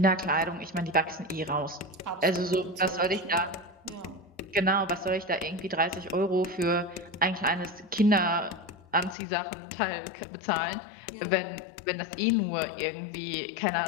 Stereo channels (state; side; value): drops out; right; at 9.2 s